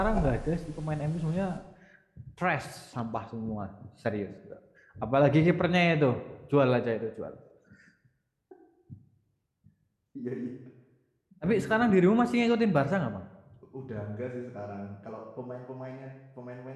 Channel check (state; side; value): identical; both; correlation 1.00